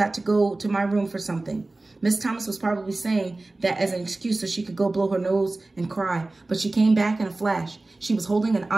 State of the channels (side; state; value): left; quieter; 3.0 dB